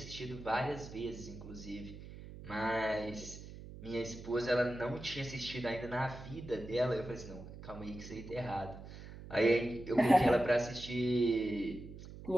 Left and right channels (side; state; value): right; noise; hum, 13 dB below the sound